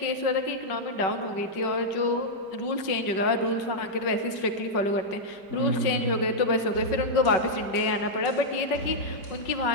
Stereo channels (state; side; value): late; right; 5.3 ms